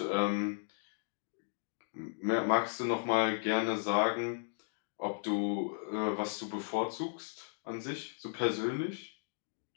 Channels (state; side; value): silent; right; digital silence